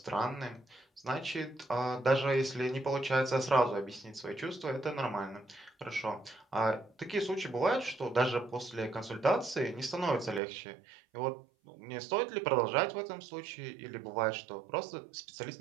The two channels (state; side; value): drops out; left; at 10.4 s